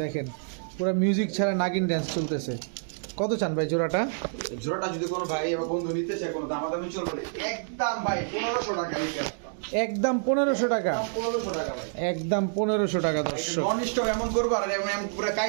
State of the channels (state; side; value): silent; left; digital silence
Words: দেখেন, পুরো মিউজিক ছাড়া নাগিন ড্যান্স চলতেছে। কত চান ভাই জোড়াটা? জোড়াটা যদি কোনো ভাই বা বন্ধু নিতে চায়, কোনো দামাদামি চলবে একদম ভাই 1500 টাকা, একদম 1500 টাকা, 1500 টাকা ভাই, একদম 1500 টাকা দর্শক। নন স্টপ এমন করবো আর এমন পুরো